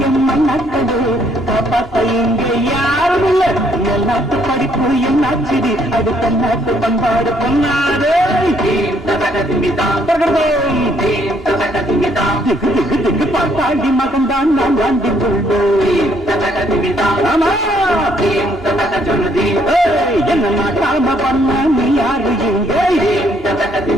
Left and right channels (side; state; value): both; normal; correlation 0.68